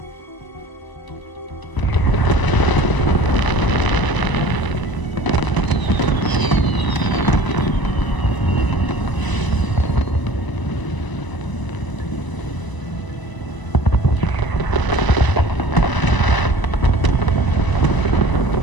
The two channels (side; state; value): right; late; 1.0 ms